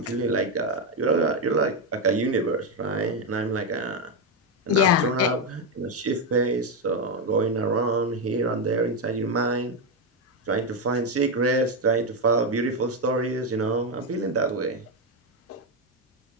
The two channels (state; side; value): normal; both; correlation 0.06